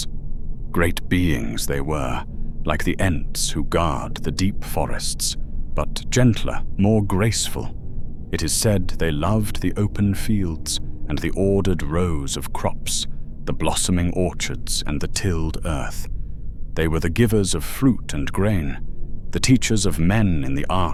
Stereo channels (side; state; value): both; identical; correlation 1.00